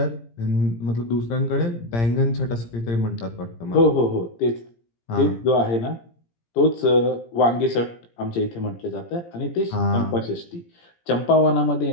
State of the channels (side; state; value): right; late; 17 ms